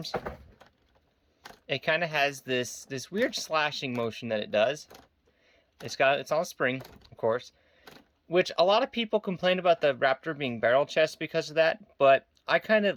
it kind of has this weird slashing motion that it does. It's on a spring, of course, which a lot of people complain about the Raptor being barrel chest because of that, but I kind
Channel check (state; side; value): identical; both; correlation 1.00